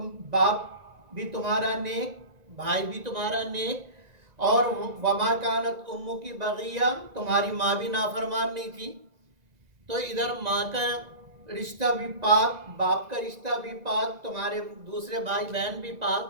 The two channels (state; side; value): late; left; 1.9 ms